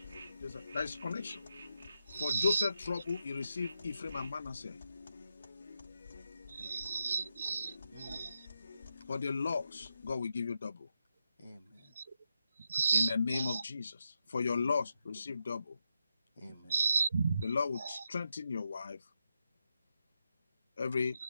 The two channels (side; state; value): both; inverted; correlation -0.85